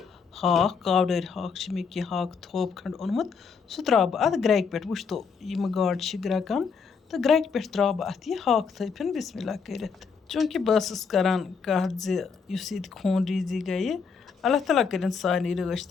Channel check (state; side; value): quieter; right; 5.7 dB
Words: ہاکھ کاوڈٲرۍ ہاکھ چھِ مےٚ کینٛہہ ہاکھ تھوپ کھنٛڈ اوٚنمُت سُہ ترٛاوٕ بہٕ اَتھ گرٛٮ۪کہِ پٮ۪ٹھ. وٕچھتو یِم گاڈٕ چھِ گرٛٮ۪کان تہٕ گرٛٮ۪کہِ پٮ۪ٹھ ترٛاوٕ بہٕ اَتھ یہِ ہاکھ تھٲپِن بِسمہِ اللہ کٔرِتھ. چوٗنٛکہِ بہٕ ٲسٕس کَران کَتھ زِ یُس ییٚتہِ خوٗن ریٖزی گٔیہِ اللہ تعالیٰ کٔرِنۍ سارنٕے رٲچھ